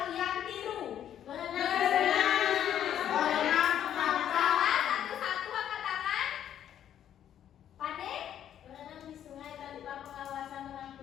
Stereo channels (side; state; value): right; quieter; 10.3 dB